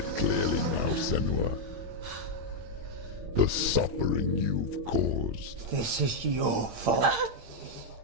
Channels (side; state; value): left; late; 8.8 ms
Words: Senua. The suffering you've caused. This is your fault.